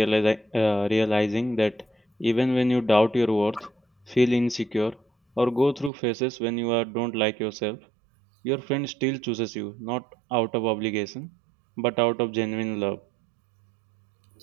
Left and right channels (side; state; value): left; drops out; at 5.9 s